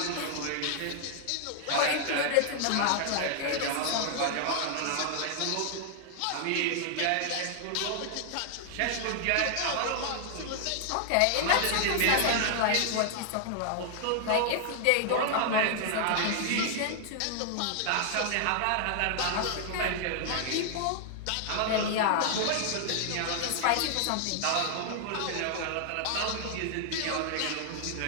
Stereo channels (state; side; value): different; both; correlation 0.00